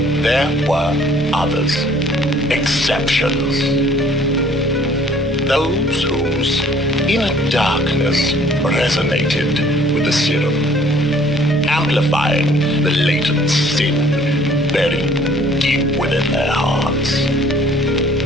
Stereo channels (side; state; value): both; normal; correlation 0.57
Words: there were others, exceptions. Those whose inner darkness resonated with the serum, amplifying the latent sin buried deep within their hearts.